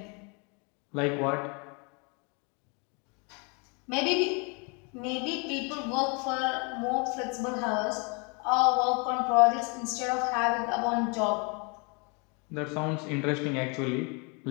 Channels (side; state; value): right; quieter; 33.2 dB